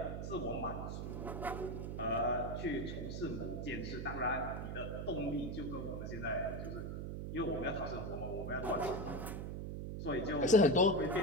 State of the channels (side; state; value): right; noise; hum, 5 dB below the sound